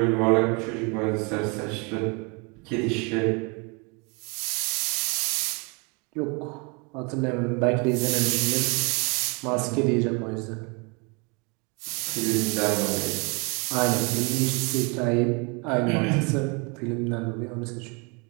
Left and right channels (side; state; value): left; quieter; 31.3 dB